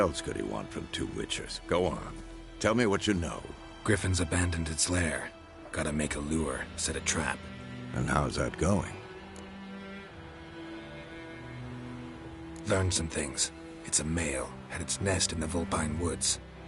could he want from two Witchers? Go on. Tell me what you know. Griffin's abandoned its lair. Gotta make a lure, set a trap. And how's that going? Learned some things. It's a male, had its nest in the Vulpine Woods.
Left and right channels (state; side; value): identical; both; correlation 1.00